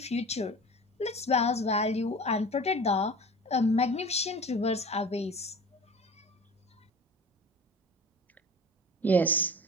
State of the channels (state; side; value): normal; both; correlation 0.38